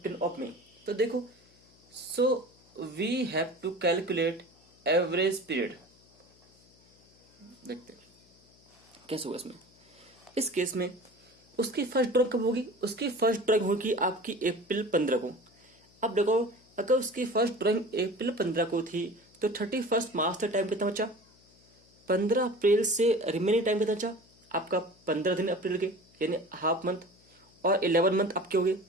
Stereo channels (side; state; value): left; noise; hum, 30 dB below the sound